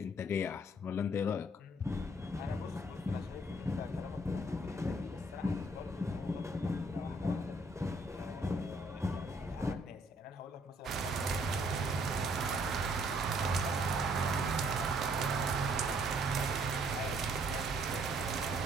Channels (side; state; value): both; normal; correlation 0.65